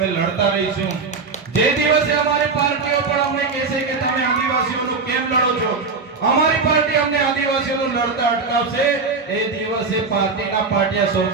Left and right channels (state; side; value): quieter; left; 4.5 dB